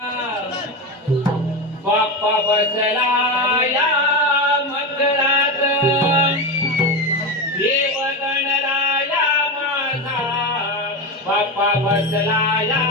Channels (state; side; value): normal; both; correlation 0.17